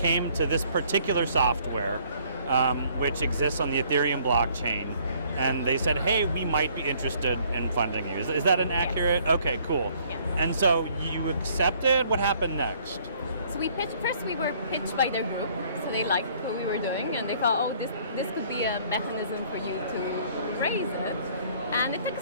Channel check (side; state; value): both; inverted; correlation -0.61